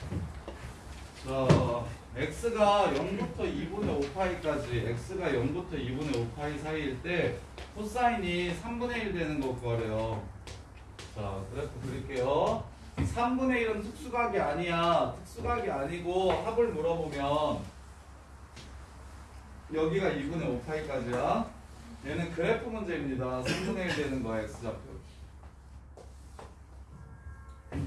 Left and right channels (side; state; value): both; identical; correlation 1.00